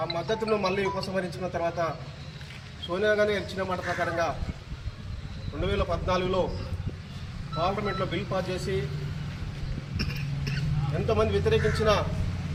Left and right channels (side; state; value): both; identical; correlation 1.00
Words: మద్దతును మళ్ళీ ఉపసంహరించుకున్న తర్వాత సోనియా గాంధీ ఇచ్చిన మాట ప్రకారంగా 2014లో పార్లమెంట్లో బిల్ పాస్ చేసి ఎంతోమంది వ్యతిరేకించినా